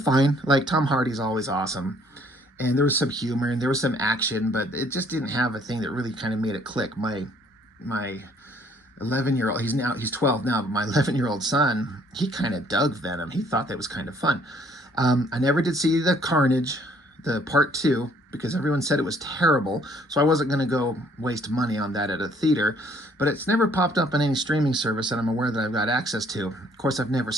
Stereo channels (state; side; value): normal; both; correlation 0.62